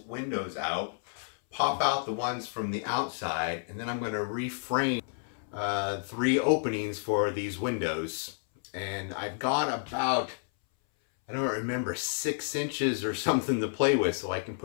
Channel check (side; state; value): right; silent; 57 dB below the other